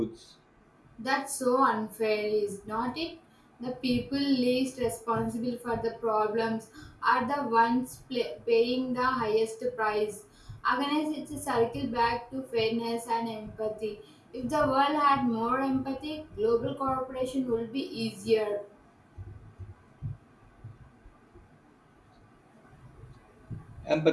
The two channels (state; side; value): identical; both; correlation 1.00